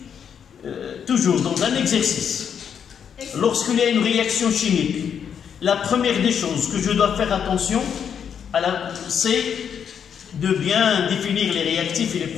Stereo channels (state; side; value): quieter; right; 7.8 dB